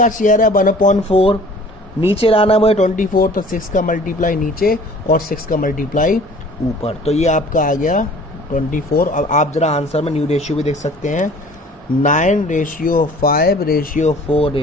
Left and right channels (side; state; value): both; normal; correlation 0.49